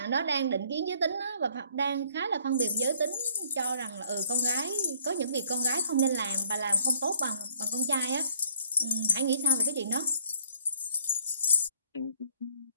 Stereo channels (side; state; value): both; inverted; correlation -0.62